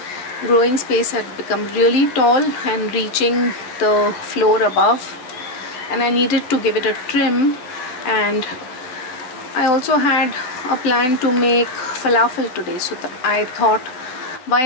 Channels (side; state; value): right; late; 12 ms